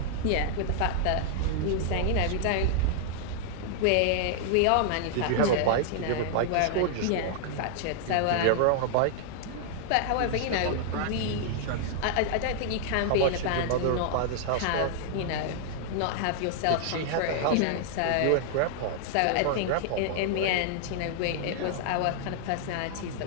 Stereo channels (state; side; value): different; both; correlation -0.01